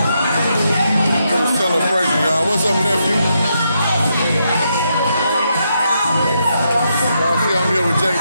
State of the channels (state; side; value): inverted; both; correlation -0.80